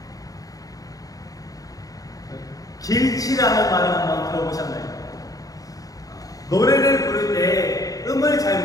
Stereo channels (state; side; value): late; right; 0.17 ms